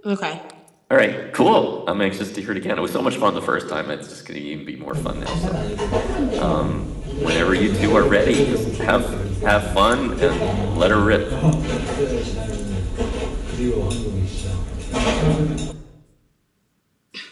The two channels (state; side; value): identical; both; correlation 1.00